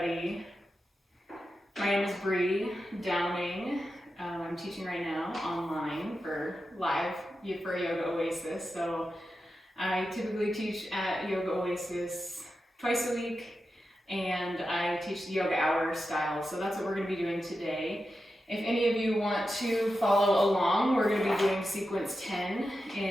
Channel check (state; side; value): normal; both; correlation 0.90